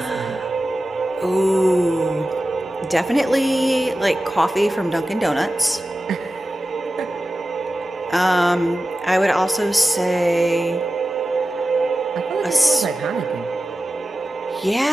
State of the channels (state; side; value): normal; both; correlation 0.94